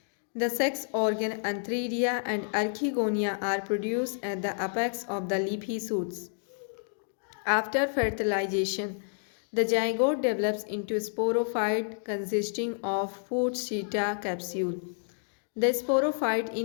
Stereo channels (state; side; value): silent; right; digital silence